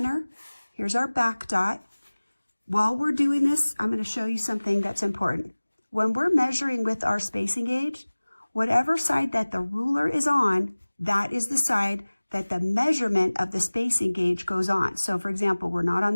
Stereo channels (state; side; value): inverted; both; correlation -1.00